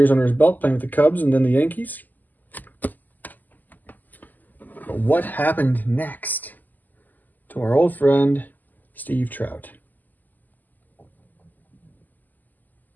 under his belt playing with the Cubs and then the Yankees. But what happened next to our old friend, Steve Trout?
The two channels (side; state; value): right; late; 0.084 ms